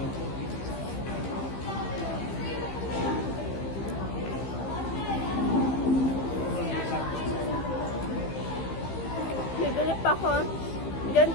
Bibili pa ako.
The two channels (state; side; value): late; right; 15 ms